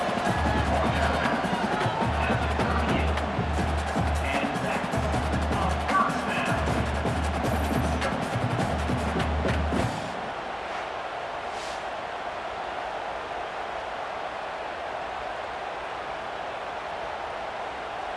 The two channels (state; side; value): identical; both; correlation 1.00